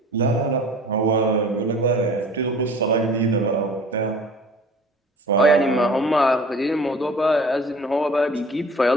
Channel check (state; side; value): normal; both; correlation 0.45